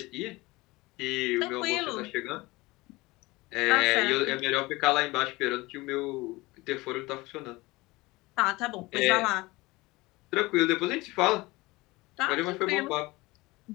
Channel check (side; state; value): right; quieter; 21.6 dB